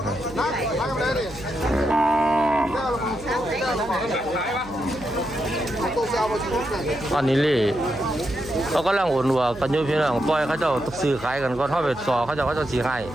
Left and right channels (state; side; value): noise; right; hum, 17 dB below the sound